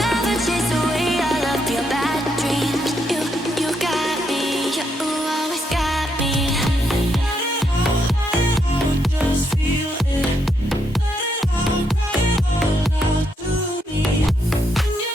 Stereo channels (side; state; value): both; normal; correlation 0.78